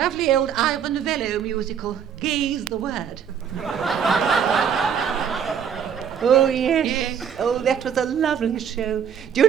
old Ivor Novello musical, Gaze the Word. Oh, yes. Oh, that was a lovely show. Do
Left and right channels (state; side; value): quieter; left; 7.9 dB